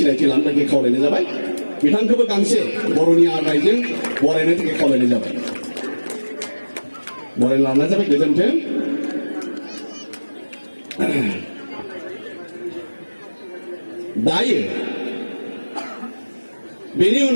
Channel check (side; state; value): both; inverted; correlation -1.00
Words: लानो थाखाय खावलायनाय जाबाय बिथांखौबो गांसे बर'नि आर'नाइजों बरायनो थाखाय खावलायनाय जाबाय बरायना लानाय जाबाय गोजोन्थों दायो बेनि